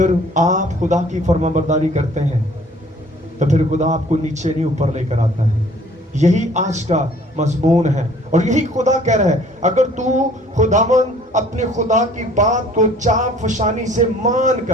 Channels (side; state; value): both; normal; correlation 0.54